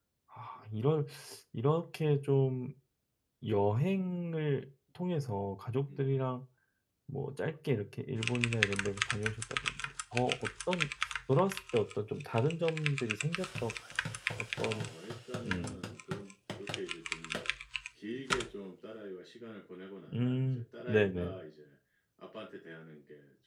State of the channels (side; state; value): both; identical; correlation 1.00